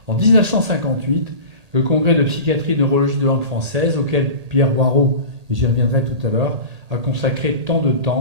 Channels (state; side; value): late; left; 1.8 ms